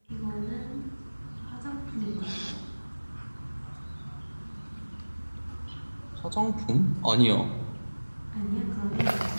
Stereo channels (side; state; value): both; inverted; correlation -1.00